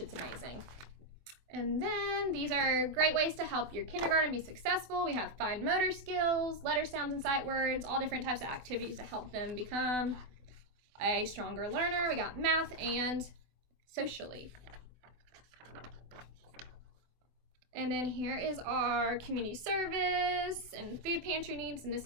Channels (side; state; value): left; late; 24 ms